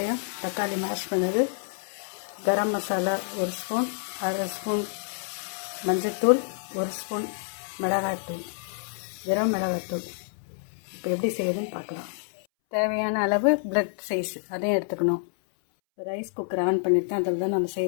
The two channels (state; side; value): silent; right; 60 dB below the other